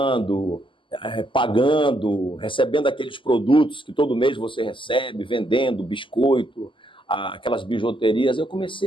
pagando, recebendo aqueles produtos que todo mês você recebe, vendendo biscoito, aquelas bijuterias, eu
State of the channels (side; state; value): right; late; 0.25 ms